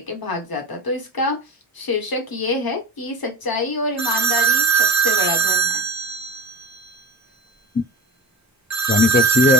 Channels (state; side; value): normal; both; correlation 0.33